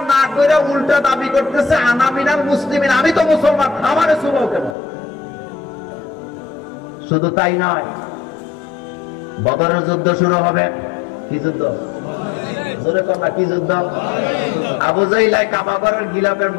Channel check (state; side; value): drops out; right; at 4.8 s